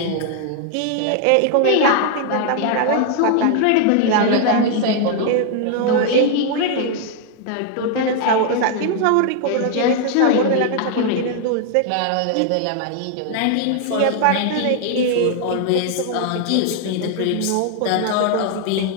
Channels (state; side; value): different; both; correlation 0.00